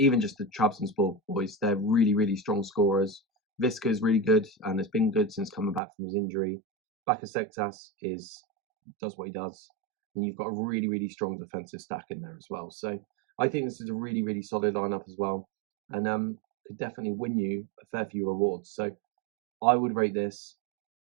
just the Trabzonspor boys, they're really, really strong scorers. Visca is really good, and has been good since coming back from his injury. Bakasektas does what he does, and you've got a really, really strong defensive stack in there as well. So I think this is a really, really solid lineup as well, and could definitely win you a fair few rewards. So I would rate this.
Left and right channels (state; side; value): drops out; left; at 5.8 s